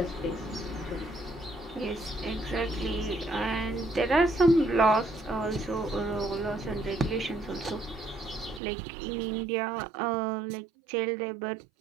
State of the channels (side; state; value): left; drops out; at 8.6 s